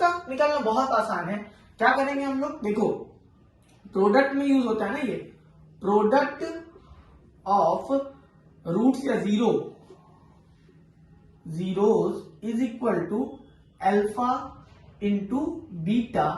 निकालना बहुत आसान है, क्या करेंगे हम लोग, देखो प्रोडक्ट में यूज होता है ना, ये प्रोडक्ट ऑफ रूट्स या zeros is equal to alpha into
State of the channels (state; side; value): identical; both; correlation 1.00